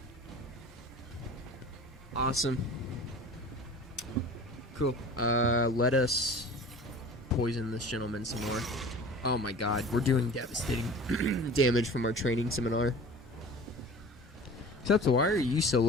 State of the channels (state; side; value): normal; both; correlation 0.41